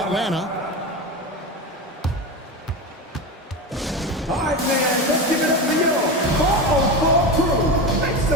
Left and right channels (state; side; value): normal; both; correlation 0.22